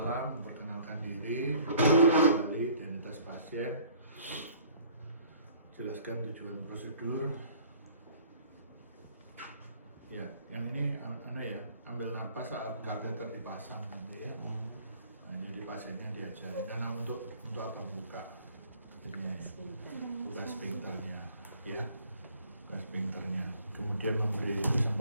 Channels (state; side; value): inverted; both; correlation -0.54